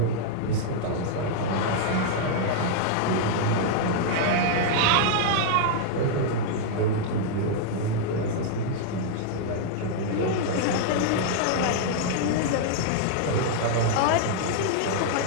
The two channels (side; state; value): both; different; correlation -0.01